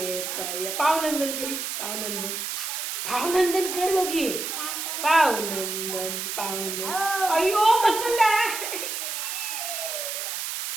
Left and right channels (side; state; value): right; noise; hiss, 4 dB below the sound